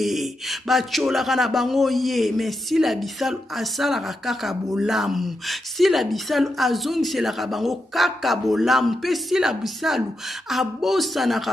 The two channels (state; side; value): normal; both; correlation 0.85